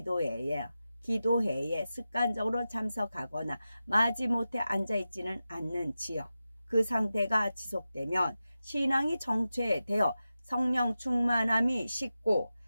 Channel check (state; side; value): inverted; both; correlation -0.93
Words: 습관적으로 참석하거나 마지못해 앉아있지는 않는지요. 그 상태가 지속되면 신앙이 정체되어 성령 충만함이 식고